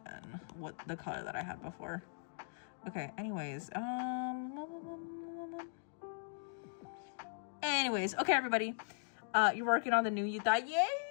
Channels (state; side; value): silent; right; digital silence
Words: than what the color that I had before. Okay, anyways, okay, everybody, you're working on the new Yuta. Yay!